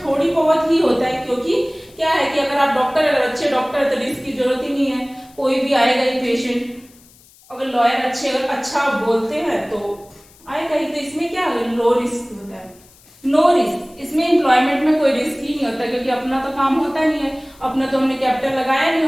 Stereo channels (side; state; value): left; noise; hiss, 27 dB below the sound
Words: थोड़ी बहुत ही होता है, क्योंकि क्या है कि अगर आप डॉक्टर, अगर अच्छे डॉक्टर तो रिस्क की जरूरत ही नहीं है, कोई भी आएगा ही पेशेंट। अगर लॉयर अच्छे, अगर अच्छा बोलते हैं तो आएगा ही। तो इसमें क्या है? लो रिस्क होता है, नो रिस्क। इसमें एम्प्लॉयमेंट में कोई रिस्क ही नहीं होता, क्योंकि अपना तो काम होता नहीं है, अपना तो हमने कैपिटल लगाया नहीं